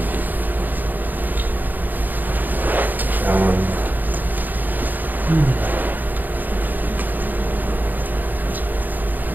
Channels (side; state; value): left; late; 0.085 ms